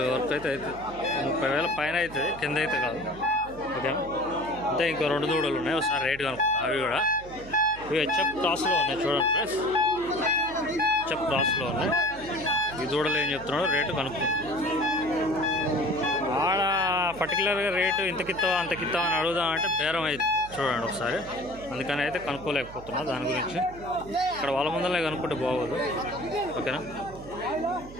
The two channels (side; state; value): right; noise; hum, 17 dB below the sound